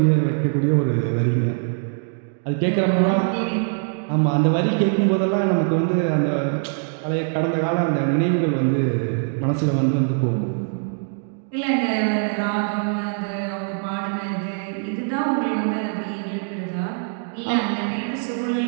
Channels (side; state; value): left; silent; 56 dB below the other